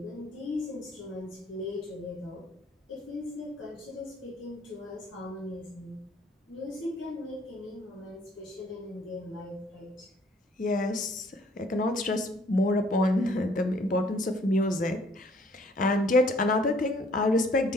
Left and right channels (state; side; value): normal; both; correlation 0.60